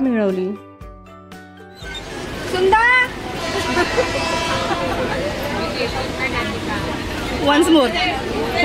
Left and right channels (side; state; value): both; identical; correlation 1.00